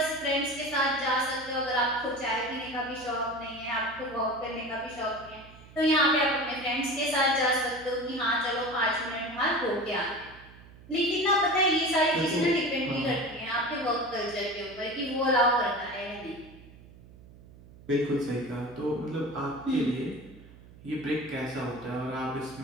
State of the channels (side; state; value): right; noise; hum, 21 dB below the sound